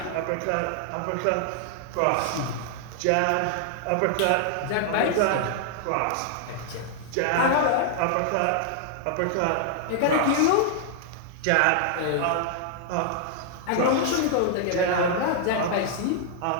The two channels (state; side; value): different; both; correlation -0.01